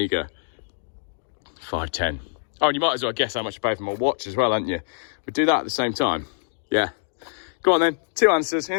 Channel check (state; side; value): silent; right; digital silence